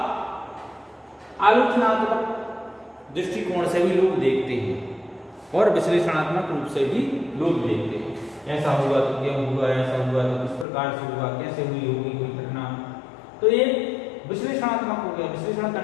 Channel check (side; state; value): right; drops out; at 10.7 s